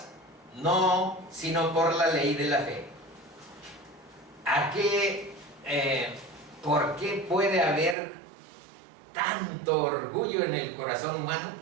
No, sino por la ley de la fe. ¿Por qué puede haber tanto orgullo en el corazón humano?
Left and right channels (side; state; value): left; drops out; at 8.0 s